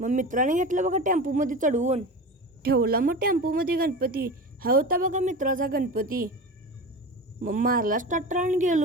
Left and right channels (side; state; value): both; normal; correlation 0.29